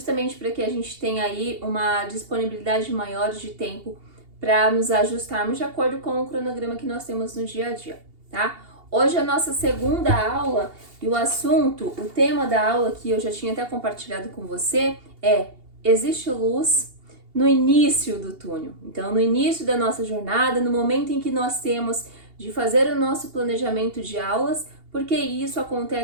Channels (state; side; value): late; left; 2.8 ms